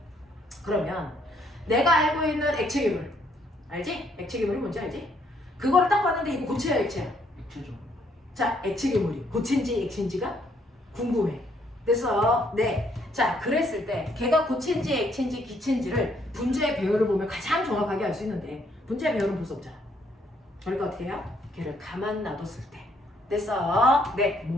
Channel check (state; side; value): normal; both; correlation 0.69